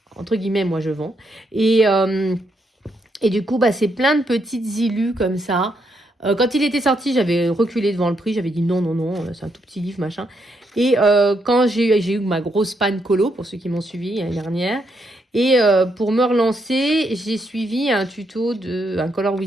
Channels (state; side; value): normal; both; correlation 0.77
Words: entre guillemets, moi je vends. Et du coup, c'est plein de petites illus comme ça. Quand il était sorti, j'avais reculé devant le prix. J'avais dit non, c'est un tout petit livre, machin. Et quand j'ai eu ma grosse panne colo, pour ceux qui m'ont suivi l'année dernière, et pour me relancer, j'ai suivi un tuto un Color